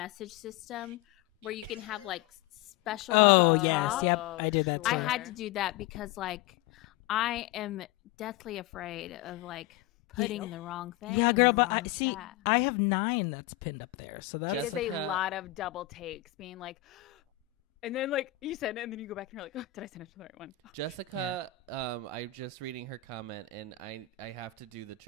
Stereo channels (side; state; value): right; quieter; 13.8 dB